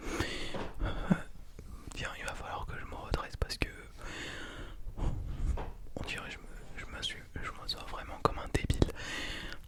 Tiens, il va falloir que je me redresse parce que on dirait que je m'assois vraiment comme un débile.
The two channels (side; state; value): both; identical; correlation 1.00